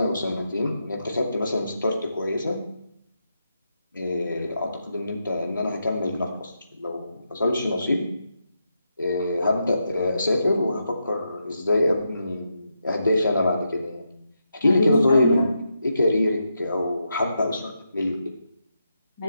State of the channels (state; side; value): inverted; both; correlation -0.83